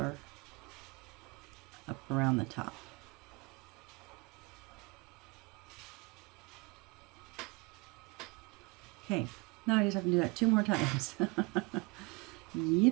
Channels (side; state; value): left; quieter; 27.8 dB